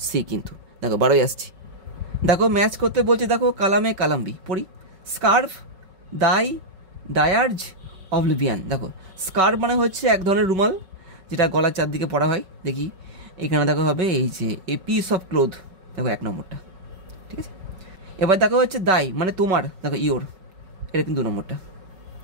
সি কিন্তু। দেখো 12-ই আসছি, দেখো ম্যাচ করতে বলছে, দেখো কালামে কালাম্বি। পড়ি, স্কার্ফ, ডায়ার্জ, অবলিভিয়ান। দেখো স্কার্ফ মানে হচ্ছে এক ধরনের রুমাল যেটা গলার চারদিকে পরা হয়। দেখি এখানে দেখো হবে এই যে এ পিস অফ ক্লোথ। দেখো 1 নম্বরটা। ঠিক আছে, এবার দেখো হচ্ছে দাই মানে তোমার। দেখো ইওর, এটা কিন্তু 2 নম্বরটা।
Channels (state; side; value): late; left; 5.3 ms